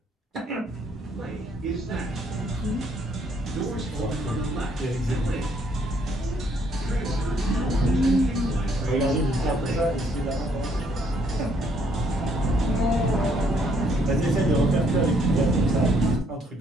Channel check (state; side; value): normal; both; correlation 0.68